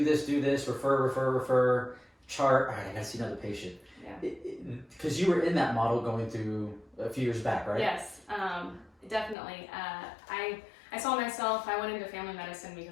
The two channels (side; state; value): right; drops out; at 9.3 s